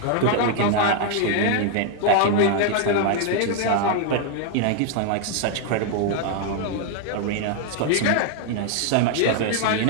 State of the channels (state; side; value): different; both; correlation 0.00